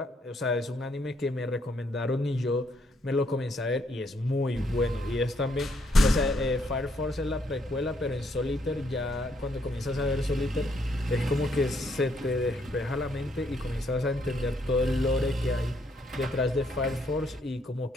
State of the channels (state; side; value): normal; both; correlation 0.72